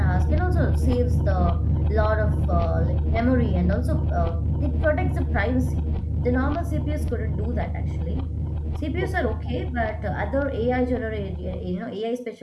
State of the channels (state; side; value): identical; both; correlation 1.00